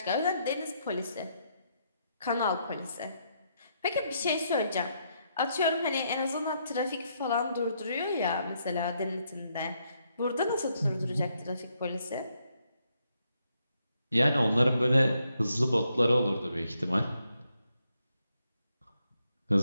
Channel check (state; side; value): inverted; both; correlation -0.77